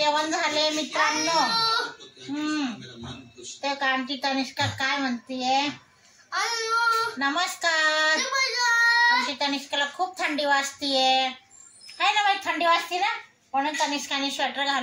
झाले मित्रांनो. ते का आमची तनिष्का काय म्हणतीये? नमस्कार. आमची तनिष्काला खूप थंडी वाजतीये, है ना बाई? थंडी वाजते ना, म्हणून तनिष्काने स्वेटर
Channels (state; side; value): identical; both; correlation 1.00